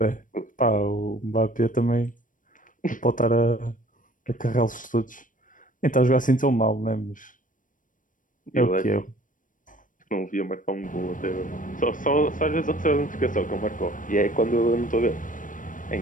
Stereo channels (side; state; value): right; late; 0.38 ms